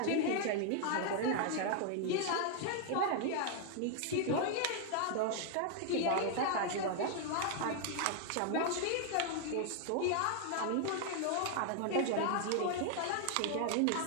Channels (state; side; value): different; both; correlation 0.00